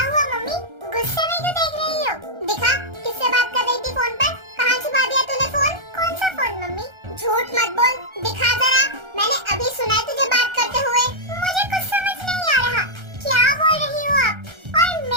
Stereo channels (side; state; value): left; late; 1.3 ms